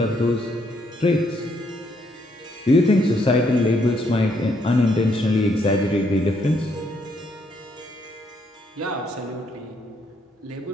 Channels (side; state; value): both; normal; correlation 0.73